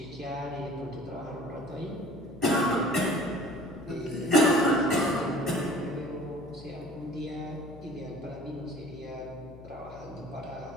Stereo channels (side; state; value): left; noise; hum, 17 dB below the sound